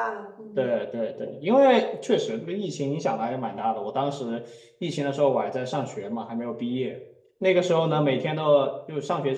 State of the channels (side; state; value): both; identical; correlation 1.00